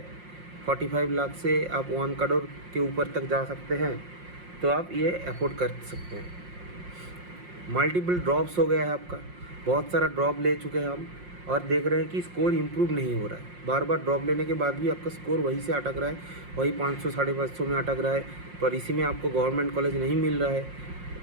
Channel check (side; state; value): left; late; 5.6 ms